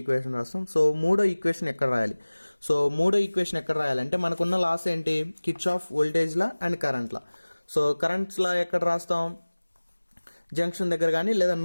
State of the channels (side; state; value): both; inverted; correlation -1.00